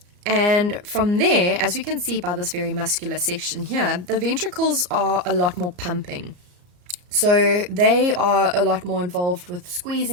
And from there, as we can see by this very muscular section here, the ventricles are a lot more pumping. So they are a lot more involved with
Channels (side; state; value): left; late; 34 ms